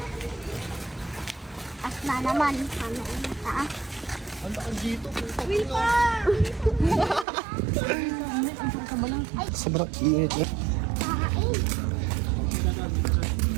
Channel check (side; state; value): left; drops out; at 7.2 s